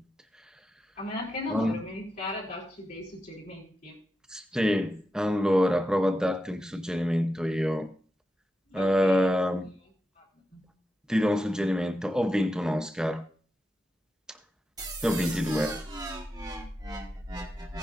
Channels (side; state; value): both; normal; correlation 0.89